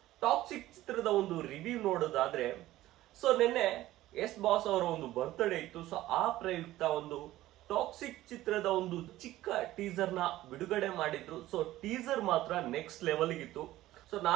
ಟಾಕ್ಸಿಕ್ ಚಿತ್ರದ ಒಂದು ರಿವ್ಯೂ ನೋಡೋದಾದ್ರೆ, ಸೊ ನಿನ್ನೆ ಎಸ್ ಬಾಸ್ ಅವರ ಒಂದು ಬರ್ತ್ಡೇ ಇತ್ತು. ಸೊ ಆ ಪ್ರಯುಕ್ತ ಒಂದು ಟಾಕ್ಸಿಕ್ ಚಿತ್ರದ ಒಂದು ಚಿಕ್ಕ ಟೀಸರ್ ನ ಬಿಡುಗಡೆ ಮಾಡಿದ್ರು. ಸೊ ಟೀಸರ್ ಮಾತ್ರ ನೆಕ್ಸ್ಟ್ ಲೆವೆಲ್ ಇತ್ತು. ಸೊ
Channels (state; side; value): quieter; left; 15.5 dB